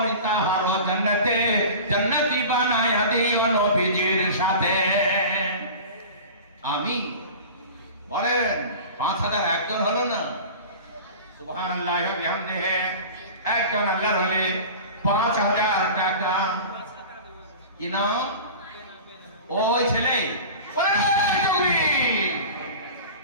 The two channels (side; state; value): both; inverted; correlation -0.36